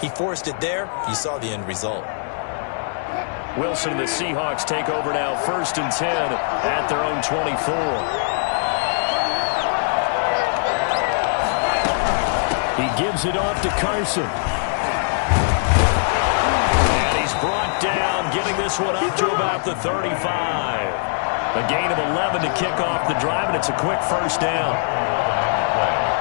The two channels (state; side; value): silent; right; digital silence